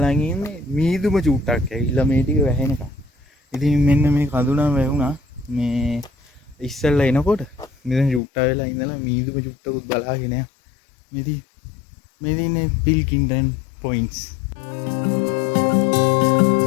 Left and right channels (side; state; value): right; drops out; at 8.2 s